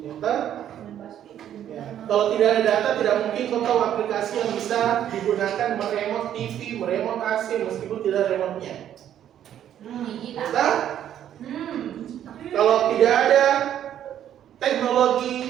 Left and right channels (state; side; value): quieter; left; 10.6 dB